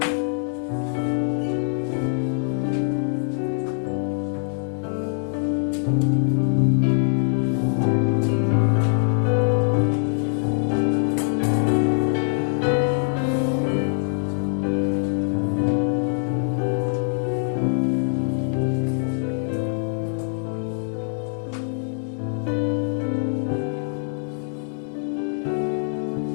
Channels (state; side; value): silent; right; digital silence